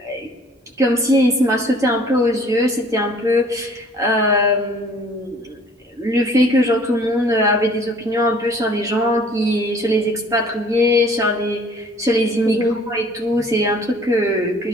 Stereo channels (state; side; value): normal; both; correlation 0.53